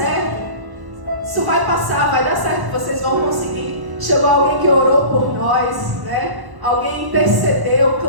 isso vai passar, vai dar certo, vocês vão conseguir. Chegou alguém que orou por nós, né? Alguém intercedeu,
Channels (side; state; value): left; late; 1.1 ms